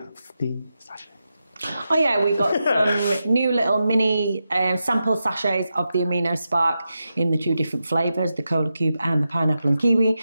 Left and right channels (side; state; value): both; inverted; correlation -0.89